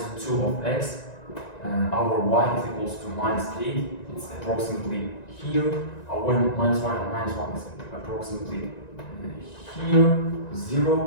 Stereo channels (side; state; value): right; late; 1.9 ms